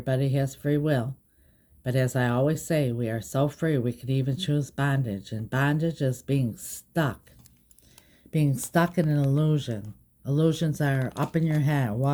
has free will. But as I always say, we are so free we could even choose bondage. And bondage is being stuck. Being stuck in an illusion. Illusions are up in your head.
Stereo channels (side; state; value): both; identical; correlation 1.00